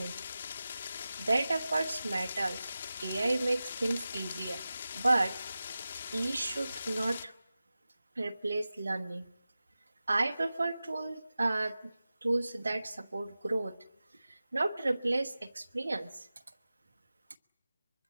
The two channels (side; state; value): both; inverted; correlation -0.95